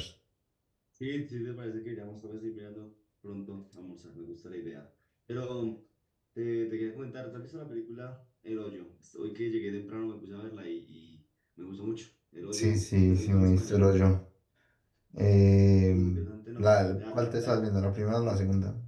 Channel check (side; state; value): both; identical; correlation 1.00